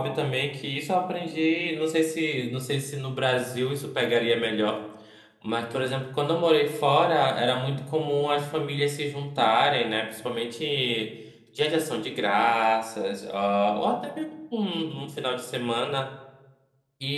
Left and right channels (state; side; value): identical; both; correlation 1.00